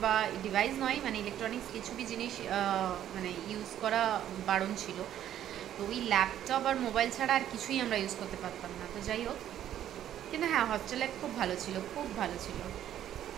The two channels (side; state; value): left; quieter; 11.2 dB